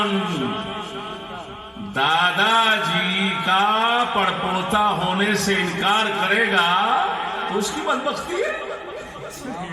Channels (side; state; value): both; identical; correlation 1.00